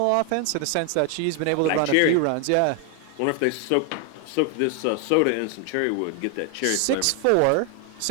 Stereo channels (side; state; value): both; different; correlation 0.00